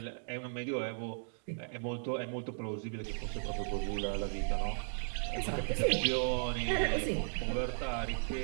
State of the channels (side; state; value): left; silent; digital silence